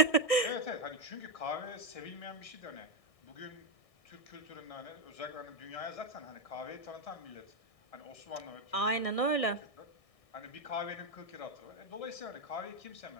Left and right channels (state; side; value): late; right; 1.6 ms